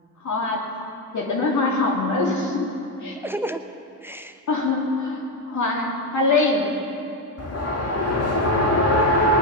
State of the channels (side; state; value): both; normal; correlation 0.09